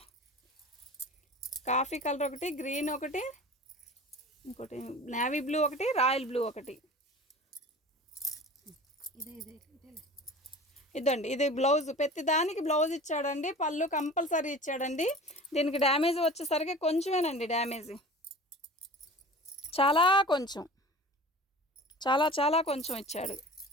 ఒకటి, గ్రీన్ ఒకటి, ఇంకోటి నేవీ బ్లూ ఒకటి, రాయల్ బ్లూ ఒకటి. ఇదండి ఇది బ్లౌజ్. ప్రతి దానికి బ్లౌజ్ ఇచ్చాడండి. పళ్ళు కంపల్సరీ ఇచ్చాడండి. దీనికి డ్యామేజ్ వచ్చేసరికి కొంచెమేనండి డ్యామేజ్, చాలా కొంచెం ఇచ్చాడు.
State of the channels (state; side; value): normal; both; correlation 0.39